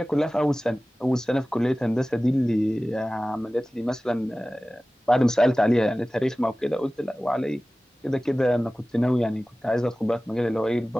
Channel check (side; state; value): both; normal; correlation 0.97